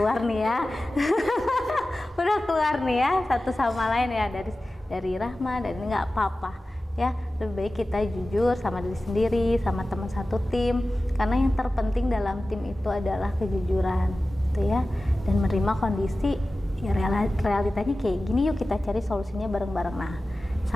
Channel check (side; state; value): both; normal; correlation 0.95